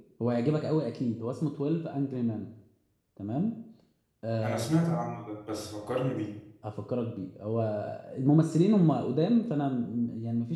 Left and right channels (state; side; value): identical; both; correlation 1.00